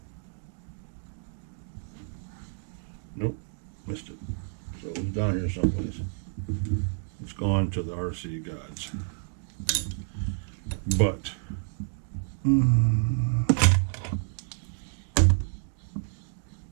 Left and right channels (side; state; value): left; silent; digital silence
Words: Nope, missed it. So it was down here someplace. It's gone to the RC gods. But